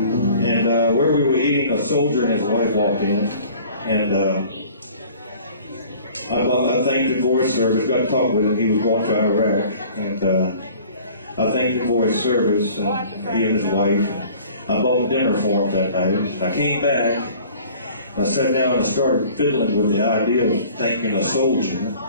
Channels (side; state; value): both; inverted; correlation -0.49